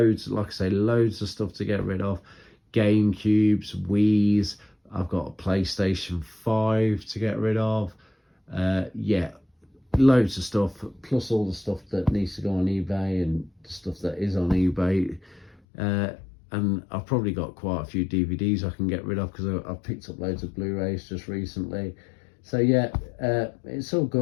like I say, loads of stuff to get rid of. GameCubes, Wii's. I've got a PlayStation 5 to get rid of. Yeah, loads of stuff, plus all the stuff that needs to go on eBay and the stuff that is on eBay. And I've probably got quite a few DVDs I can get rid of, because I've picked up loads of Blu-rays just recently. So yeah, it's all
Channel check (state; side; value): drops out; right; at 15.6 s